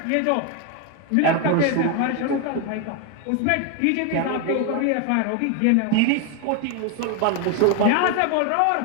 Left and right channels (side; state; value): both; different; correlation 0.01